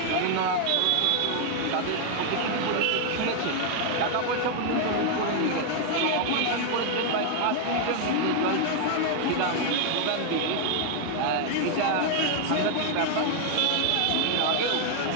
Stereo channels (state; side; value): different; both; correlation 0.00